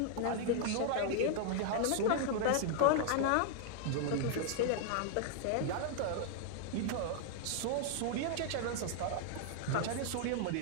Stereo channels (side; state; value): both; different; correlation -0.01